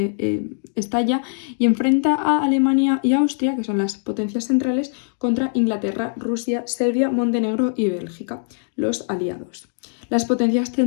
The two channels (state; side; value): silent; right; digital silence